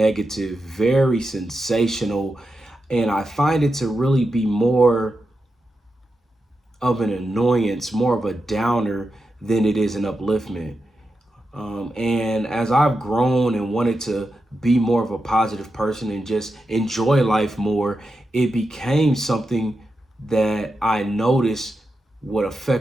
very sensational, and I find it to really be more of an annoyance, more of a downer than it is an upliftment. And as I've grown and wanted to be more of a positive person and just enjoy life more, it became something that I noticed would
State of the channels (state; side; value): normal; both; correlation 0.89